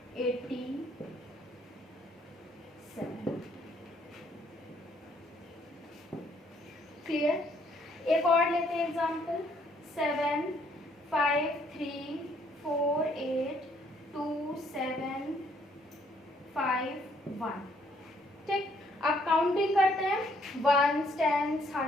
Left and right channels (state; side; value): normal; both; correlation 0.67